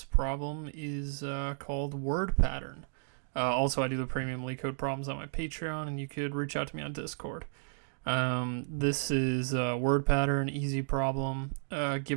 problem is called word pattern. Also, I do the premium LeetCode problems on my Patreon, and you could reach out to me on Discord. This is a word pattern, easy problem.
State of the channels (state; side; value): silent; left; digital silence